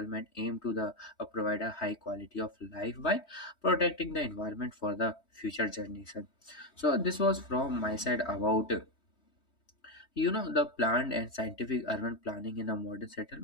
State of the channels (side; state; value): right; late; 3.2 ms